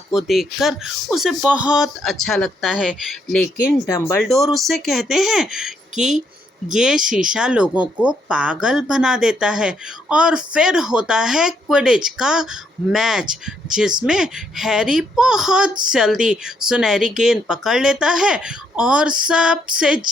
देखकर उसे बहुत अच्छा लगता है। लेकिन डंबलडोर उससे कहते हैं कि ये शीशा लोगों को पागल बना देता है। और फिर होता है क्विडिच का मैच, जिसमें हैरी बहुत जल्दी सुनहरी गेंद पकड़ लेता है और सबसे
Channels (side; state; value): both; normal; correlation 0.74